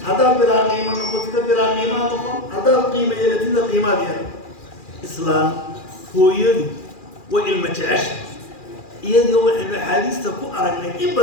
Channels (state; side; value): late; right; 2.4 ms